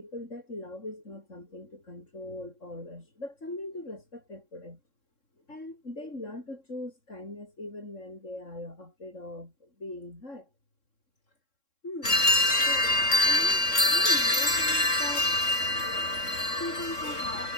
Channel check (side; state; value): right; late; 3.7 ms